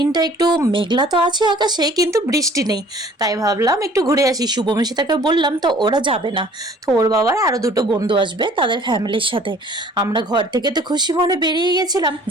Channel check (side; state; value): both; normal; correlation 0.53